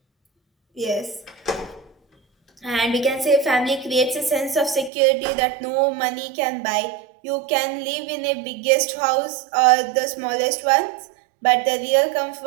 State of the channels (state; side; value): drops out; left; at 4.9 s